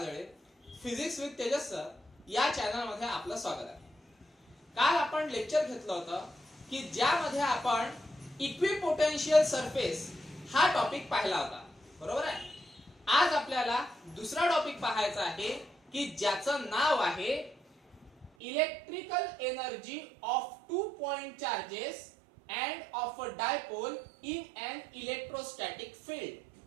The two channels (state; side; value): drops out; left; at 18.3 s